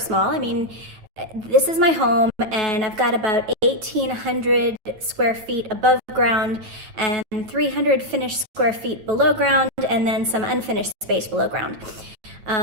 I mean, this is my home, and I've got about 1,800 square feet above ground and 300 finished square feet below ground, and then some unfinished space below ground.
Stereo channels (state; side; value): late; left; 8.8 ms